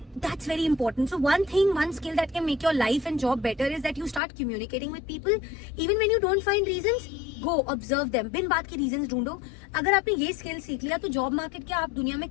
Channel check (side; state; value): right; drops out; at 4.2 s